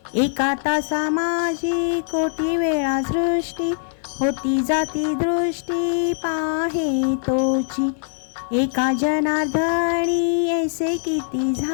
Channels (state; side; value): silent; right; digital silence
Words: एका तासा माझी कोटी वेळा सृष्टी, होती जाती दृष्टी पाहे तोची। एका जनार्दनी ऐसे किती